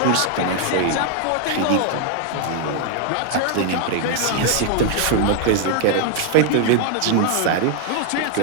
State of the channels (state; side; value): different; both; correlation 0.00